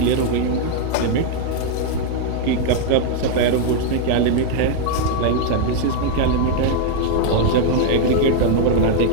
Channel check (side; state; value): both; different; correlation 0.00